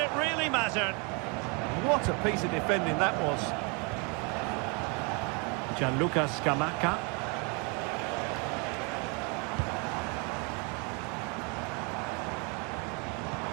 really mattered. What a piece of defending that was. Gianluca Scamacca.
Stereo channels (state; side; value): quieter; left; 32.8 dB